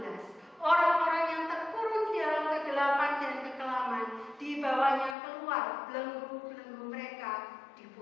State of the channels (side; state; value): right; drops out; at 5.2 s